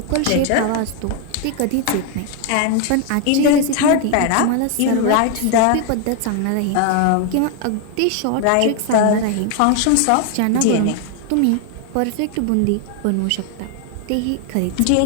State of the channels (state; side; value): different; both; correlation 0.01